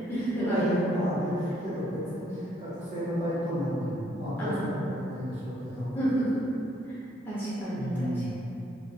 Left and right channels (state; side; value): normal; both; correlation 0.69